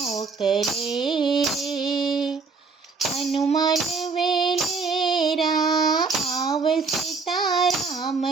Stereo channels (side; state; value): left; quieter; 4.7 dB